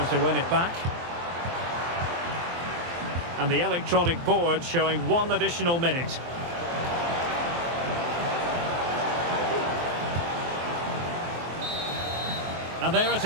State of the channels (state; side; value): late; left; 23 ms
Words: to win it back. And the electronic board showing 1 additional minute. And there it